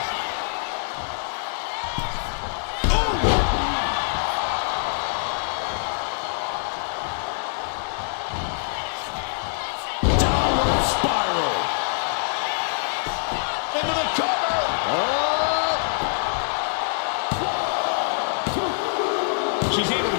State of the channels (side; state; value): right; silent; digital silence